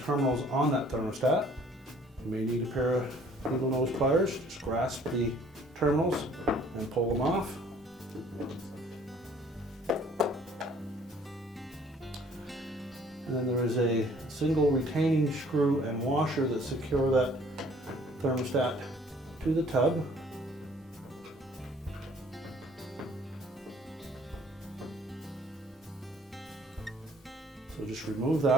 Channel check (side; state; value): both; normal; correlation 0.57